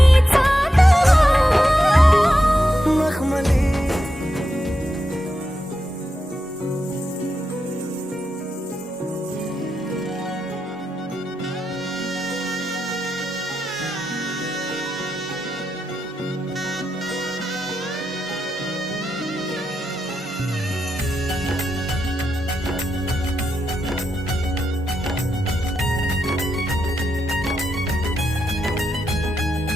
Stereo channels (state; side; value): normal; both; correlation 0.86